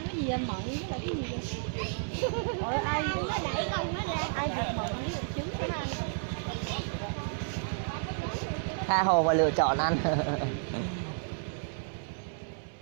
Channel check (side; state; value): left; silent; 57 dB below the other